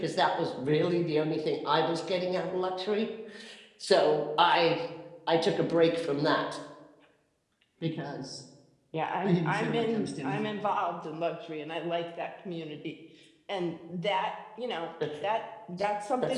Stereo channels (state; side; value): identical; both; correlation 1.00